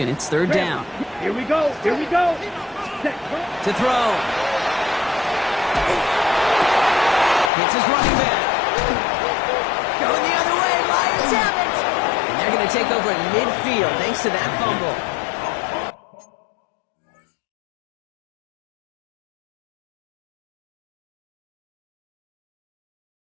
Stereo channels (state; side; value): drops out; right; at 7.5 s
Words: it's 3rd down. Here we go. Here we go. To throw. Hits his running back. Going the other way. Lions have it. And they're going to take over at midfield thanks to that fumble.